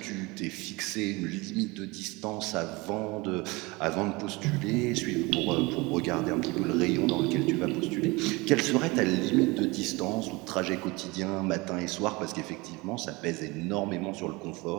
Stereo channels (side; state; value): left; quieter; 24.2 dB